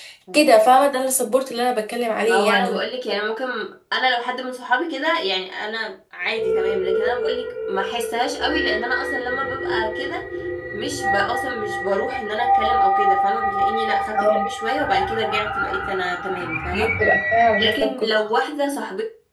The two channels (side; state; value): both; identical; correlation 1.00